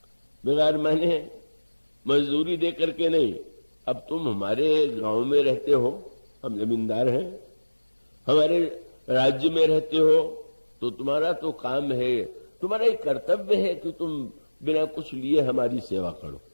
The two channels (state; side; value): inverted; both; correlation -1.00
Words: बिगार माने मजदूरी दे करके नहीं। अब तुम हमारे गांव में रहते हो, हम जमींदार हैं, हमारे राज्य में रहते हो, तो तुम्हारा तो काम है, तुम्हारा एक कर्तव्य है कि तुम बिना कुछ लिए हमारी सेवा करो।